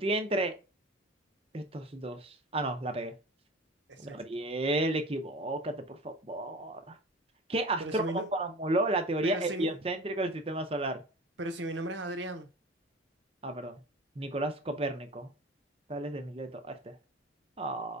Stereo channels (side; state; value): both; normal; correlation 0.37